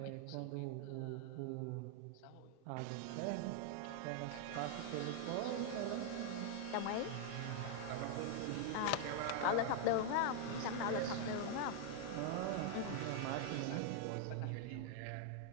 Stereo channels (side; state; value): both; different; correlation 0.00